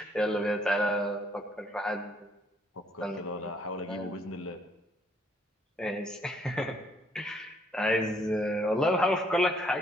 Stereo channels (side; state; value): both; normal; correlation 0.67